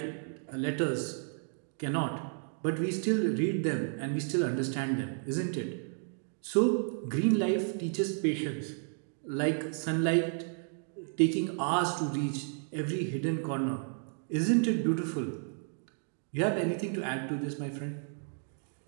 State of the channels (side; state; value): left; silent; 56 dB below the other